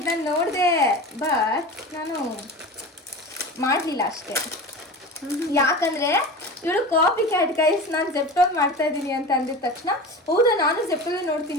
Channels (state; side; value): normal; both; correlation 0.31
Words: ನಾನು ನೋಡಿದೆ, ಬಟ್ ನಾನು ಮಾಡಲಿಲ್ಲ ಅಷ್ಟೇ. ಯಾಕಂದರೆ ಇವಳು ಕಾಪಿ ಕ್ಯಾಟ್ ಗೈಸ್. ನಾನು ಜೆಪ್ಟೋಲ್ ಮಾಡ್ತಾ ಇದ್ದೀನಿ ಅಂತ ಅಂದಿದ ತಕ್ಷಣ, ಹೌದಾ ನಾನು ಜೆಪ್ಟೋಲೇ